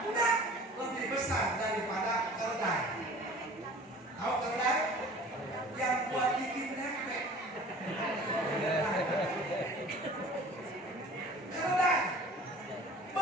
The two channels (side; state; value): both; normal; correlation 0.45